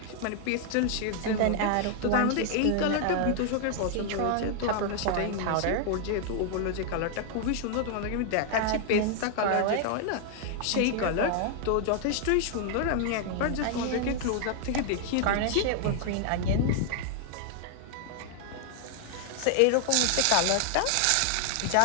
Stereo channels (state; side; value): different; both; correlation 0.00